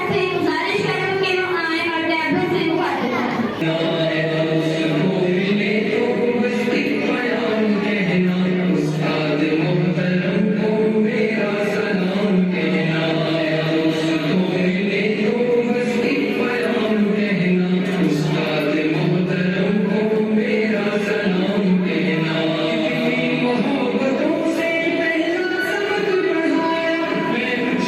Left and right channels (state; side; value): identical; both; correlation 1.00